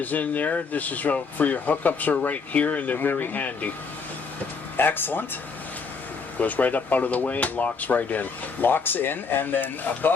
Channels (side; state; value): right; quieter; 4.9 dB